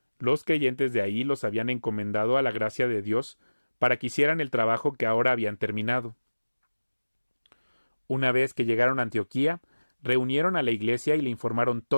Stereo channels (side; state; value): both; inverted; correlation -1.00